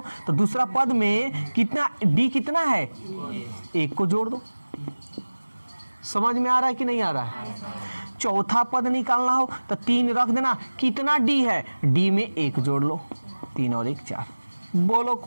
तो दूसरा पद में कितना, डी कितना है, 1 को जोड़ दो। समझ में आ रहा है कि नहीं आ रहा है? चौथा पद निकालना हो तो 3 रख देना। कितना डी है, डी में 1 जोड़ लो, 3 और 1 4। बोलो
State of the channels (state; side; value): inverted; both; correlation -1.00